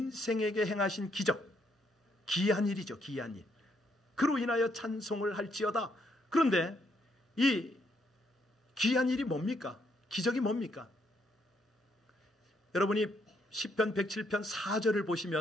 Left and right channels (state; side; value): normal; both; correlation 0.73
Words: 행하신 기적, 기이한 일이죠. 기이한 일. 그로 인하여 찬송을 할지어다. 그런데 이 기이한 일이 뭡니까? 기적이 뭡니까? 여러분이 시편 107편 4절을